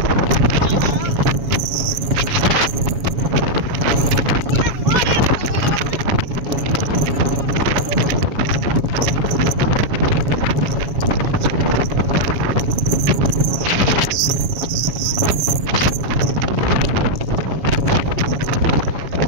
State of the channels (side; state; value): left; late; 7.2 ms